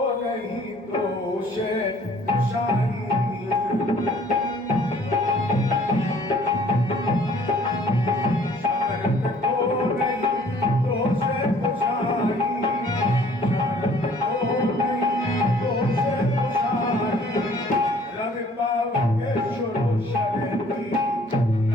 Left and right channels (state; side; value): normal; both; correlation 0.56